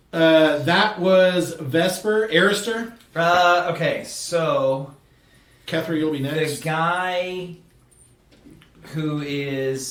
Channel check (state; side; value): identical; both; correlation 1.00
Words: that was Vesper. Arister. Okay, so Kethra, you'll be the next. guy who